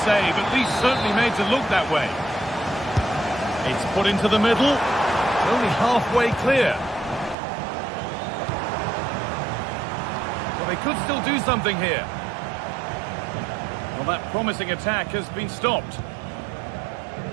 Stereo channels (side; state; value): left; drops out; at 7.4 s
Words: save, at least certainly made to look that way. It's put into the middle. Only halfway clear. Well, they could still do something here. Well, that promising attack has been stopped.